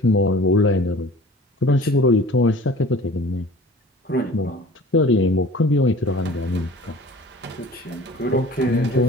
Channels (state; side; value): normal; both; correlation 0.44